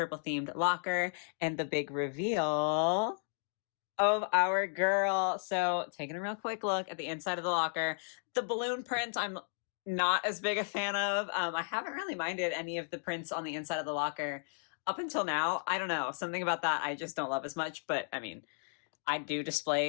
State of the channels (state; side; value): silent; right; digital silence